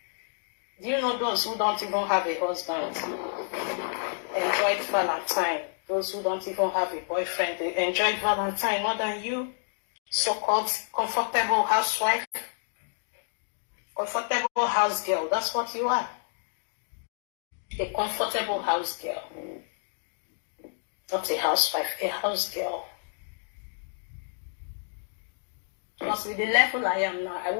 Do you know those who don't even have a husband enjoyed Valentine? Those who don't even have a boyfriend, they enjoyed Valentine more than you. So-called comfortable housewife, comfortable house girl. That's what you are. A comfortable house girl. Not a housewife, a house girl. Because with the level I am now, I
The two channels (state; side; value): silent; right; digital silence